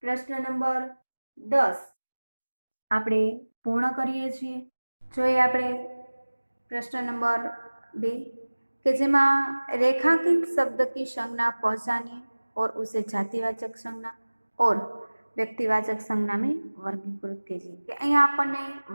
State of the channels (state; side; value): inverted; both; correlation -1.00